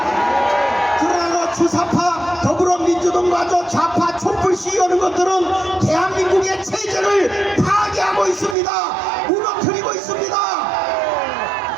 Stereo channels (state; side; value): drops out; left; at 8.6 s